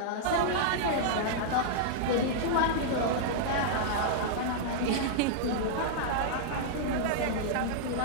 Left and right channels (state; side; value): different; both; correlation -0.02